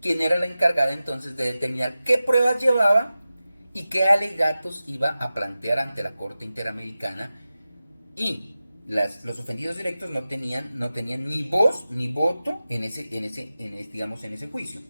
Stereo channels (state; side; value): inverted; both; correlation -0.95